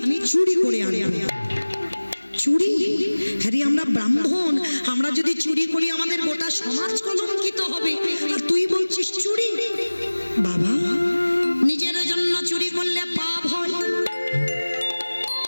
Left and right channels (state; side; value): inverted; both; correlation -1.00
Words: চুরি করে আনবো। চুরি? হ্যাঁ রে, আমরা ব্রাহ্মণ, আমরা যদি চুরি করি আমাদের গোটা সমাজ কলঙ্কিত হবে, আর তুই বলছিস চুরি? বাবা নিজের জন্য চুরি করলে পাপ হয়।